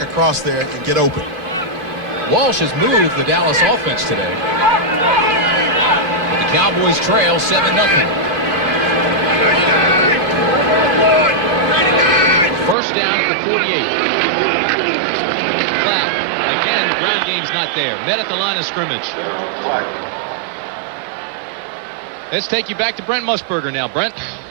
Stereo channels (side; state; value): left; drops out; at 12.8 s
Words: across there and get open. Walsh has moved the Dallas offense today. But the Cowboys trail 7-0. First down at the 48. Flat. Again, the ground game's not there. Met at the line of scrimmage. Let's take you back to Brent Musburger now. Brent?